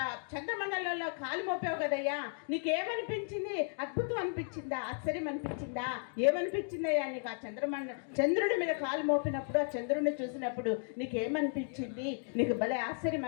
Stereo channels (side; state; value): right; silent; 55 dB below the other